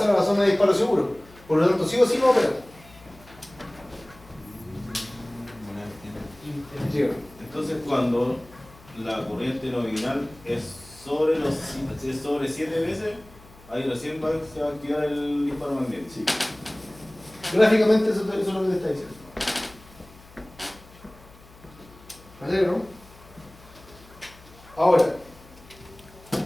a la zona de disparo seguro. Por lo tanto, sí o sí va a operar. Entonces, cuando la corriente nominal es sobre 7 veces, ahí recién se va a activar el disparo magnético. Sí. Gráficamente eso es lo que te está diciendo. ¿Vale, no? Ahora,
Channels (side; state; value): left; noise; hum, 23 dB below the sound